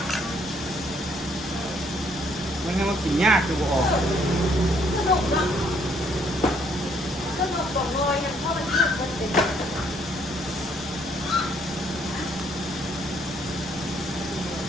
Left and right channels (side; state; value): both; normal; correlation 0.67